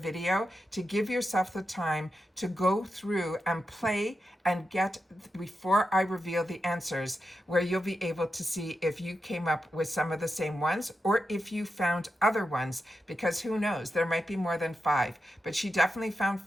to give yourself the time to go through and play and get, before I reveal the answers, where you'll be able to see if you came up with some of the same ones or if you found other ones, because who knows, there might be more than 5, but she definitely found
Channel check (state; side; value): normal; both; correlation 0.89